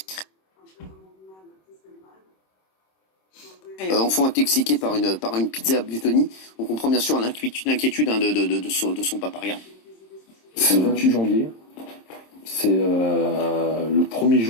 Enfant intoxiqué par une pizza Buitoni. On comprend bien sûr l'inquiétude de son papa. Regarde. C'est le 28 janvier. C'est le premier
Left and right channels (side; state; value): right; late; 26 ms